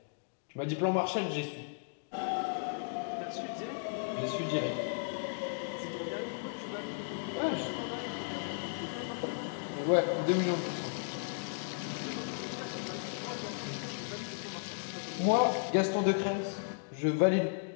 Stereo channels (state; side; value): silent; right; digital silence